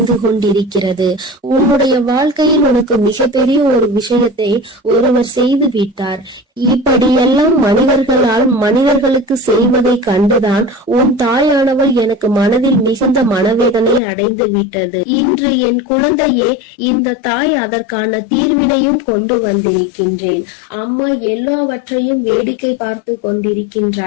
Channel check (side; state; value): right; drops out; at 14.0 s